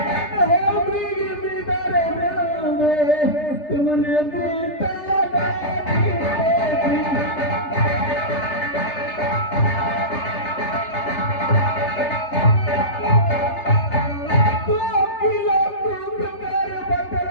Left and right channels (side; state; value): right; late; 3.3 ms